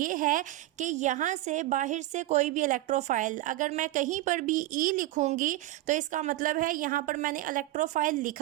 है कि यहाँ से बाहर से कोई भी इलेक्ट्रोफाइल, अगर मैं कहीं पर भी ई लिखूँगी तो इसका मतलब है यहाँ पर मैंने इलेक्ट्रोफाइल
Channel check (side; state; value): left; quieter; 16.6 dB